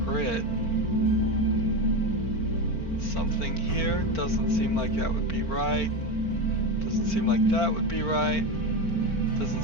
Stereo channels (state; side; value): late; right; 4.4 ms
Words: Something here doesn't seem like that would be right. Doesn't seem like that would be right. Doesn't